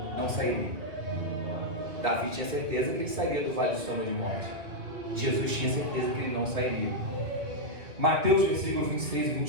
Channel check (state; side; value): late; left; 2.5 ms